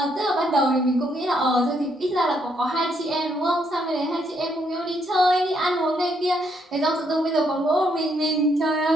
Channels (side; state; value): both; normal; correlation 0.73